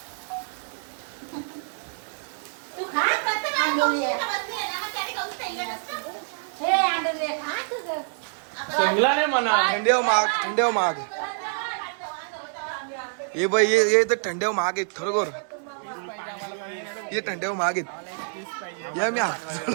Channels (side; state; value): left; silent; 61 dB below the other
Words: तू खा शेंगला नाही म्हणा. थंड्यावर महाग. ये बाई ये तर थंड्यावर महाग आहेत खरोखर. ये थंड्यावर महाग आहेत. या मी